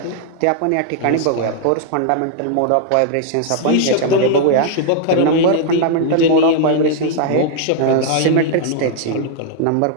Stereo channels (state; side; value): different; both; correlation 0.00